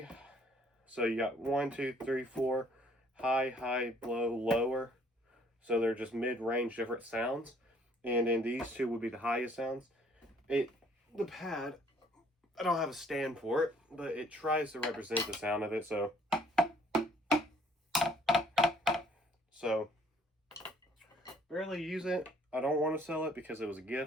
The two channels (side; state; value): both; normal; correlation 0.61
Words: so you got 1, 2, 3, 4, high, low, lower. So they're just mid-range different sounds. And then these 2 would be the highest sounds. The pad, I don't have a stand for it, but it tries to represent the sound of it, so barely use it. I don't want to sell it because it was a